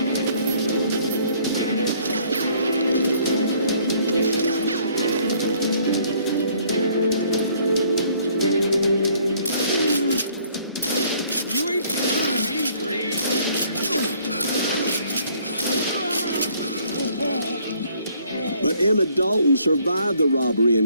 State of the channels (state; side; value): inverted; both; correlation -0.62